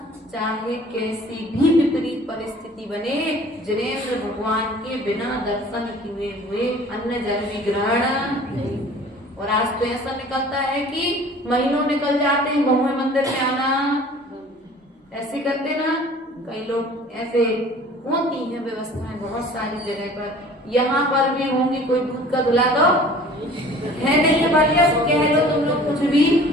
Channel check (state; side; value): normal; both; correlation 0.47